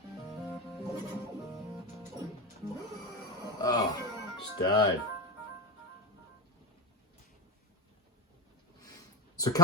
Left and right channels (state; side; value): normal; both; correlation 0.16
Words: Oh, just died. So